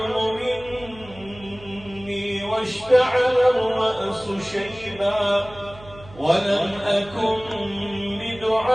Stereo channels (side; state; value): right; noise; hum, 20 dB below the sound